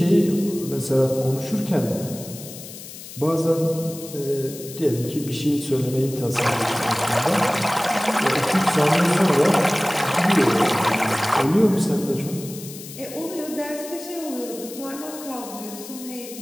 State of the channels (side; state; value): left; noise; hiss, 14 dB below the sound